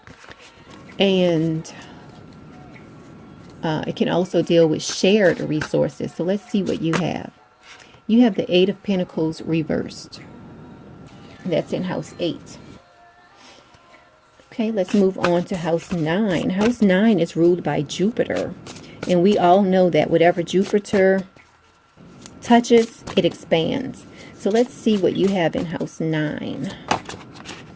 and it can also deal with shared resources. So let's see what you have. You have the 8 of Pentacles reversed. That's in house 8. Okay, let's move on to house 9. House 9 is ruled by Jupiter, and we all know that whatever Jupiter touches, it expands. So let's see what you have in house 9.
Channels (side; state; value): both; identical; correlation 1.00